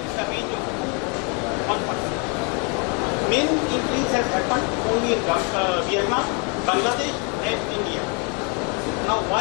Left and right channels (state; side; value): quieter; right; 34.7 dB